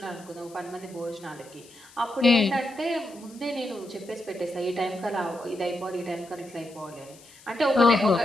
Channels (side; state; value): left; noise; hiss, 23 dB below the sound